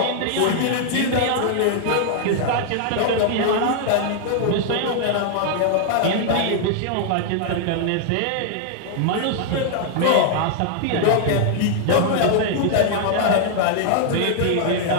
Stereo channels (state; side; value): different; both; correlation -0.01